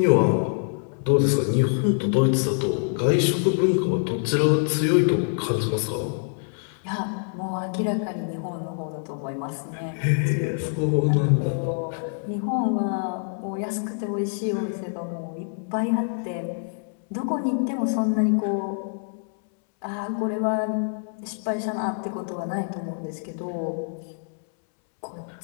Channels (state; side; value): silent; right; 61 dB below the other